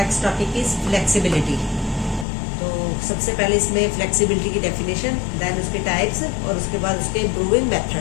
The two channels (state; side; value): drops out; right; at 2.2 s